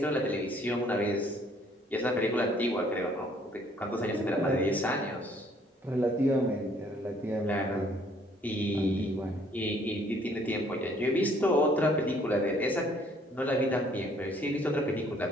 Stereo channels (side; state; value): both; normal; correlation 0.62